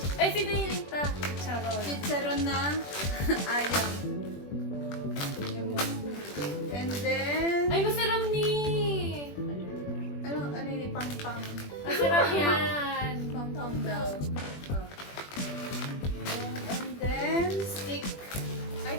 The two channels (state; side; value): late; right; 21 ms